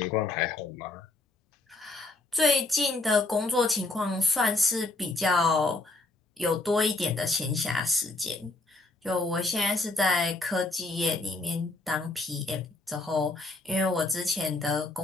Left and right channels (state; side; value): quieter; right; 3.0 dB